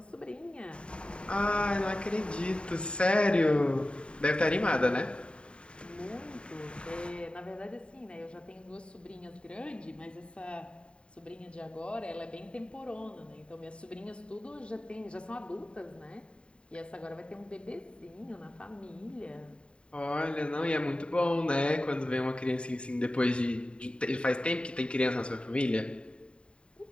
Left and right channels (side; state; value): right; late; 0.054 ms